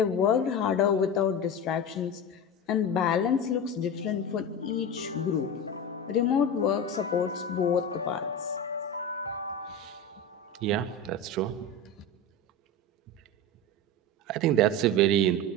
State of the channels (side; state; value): both; normal; correlation 0.24